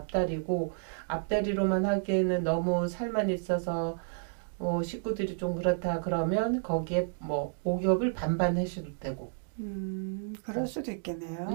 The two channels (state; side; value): silent; left; digital silence